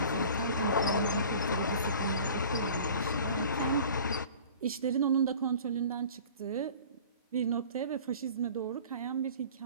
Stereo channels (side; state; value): both; inverted; correlation -0.44